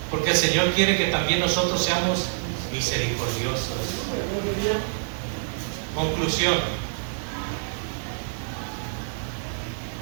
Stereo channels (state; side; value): silent; left; digital silence